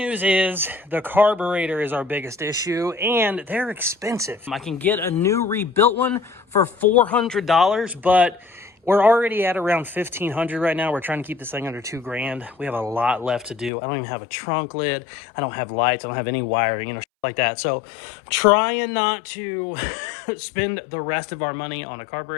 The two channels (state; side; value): drops out; right; at 13.7 s